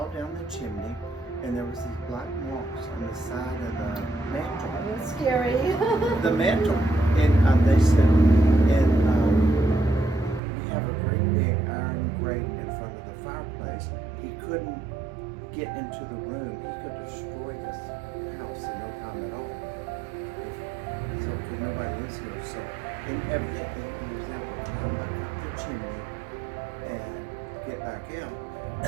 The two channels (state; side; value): drops out; left; at 10.4 s